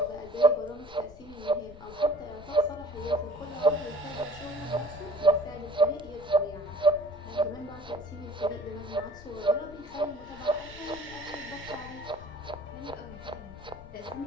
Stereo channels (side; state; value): left; noise; rumble, 18 dB below the sound